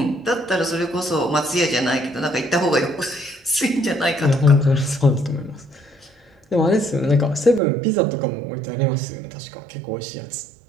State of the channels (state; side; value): drops out; left; at 7.6 s